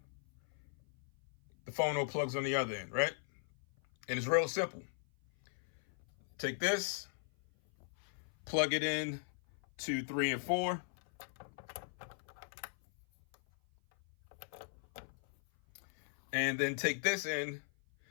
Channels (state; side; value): silent; right; 52 dB below the other